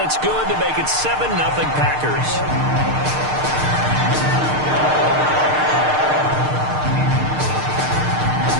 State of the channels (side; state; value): left; late; 6.6 ms